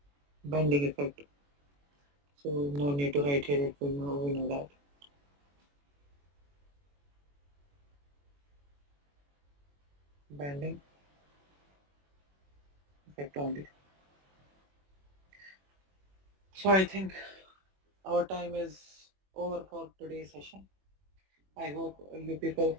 bending effect. So no need to write here, we know that. Bending effect only. So I think our time is over for today's session. I hope you people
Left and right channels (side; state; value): left; late; 21 ms